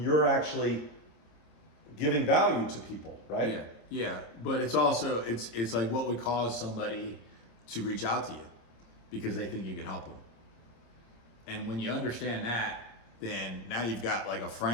actually giving value to people, right? Yeah, yeah. But it's also, it's like what would cause somebody to reach out to you because they think you can help them. And when you understand that, then now you've got like a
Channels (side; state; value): right; late; 26 ms